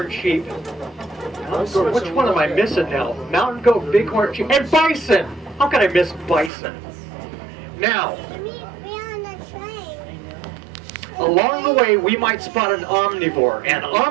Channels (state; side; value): drops out; left; at 6.5 s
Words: sheep. Which one am I missing now? Mountain goat, bighorn sheep, and bison. How can I miss bison? Now, along the way, we might spot an omnivore. An